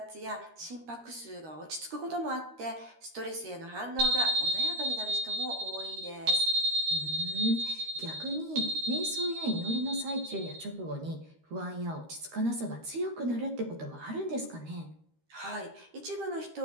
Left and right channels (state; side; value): late; left; 13 ms